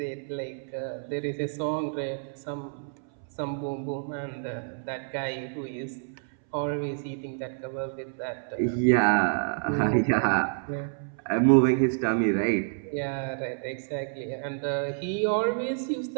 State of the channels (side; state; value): left; silent; 59 dB below the other